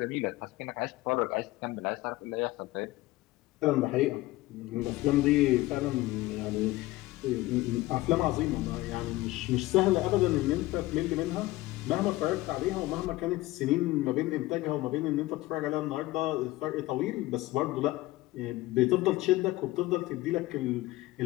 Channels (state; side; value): quieter; right; 18.3 dB